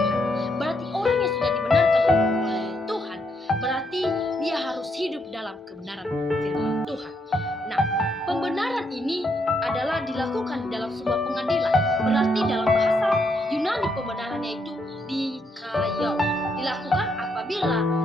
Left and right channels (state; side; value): normal; both; correlation 0.76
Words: Berarti orang yang sudah dibenarkan oleh Tuhan, berarti dia harus hidup dalam kebenaran firman Tuhan. Nah, pembenaran ini adalah dilakukan dalam sebuah pengadilan. Berarti dalam bahasa Yunani pembenarannya itu dikayau. Dilakukan apabila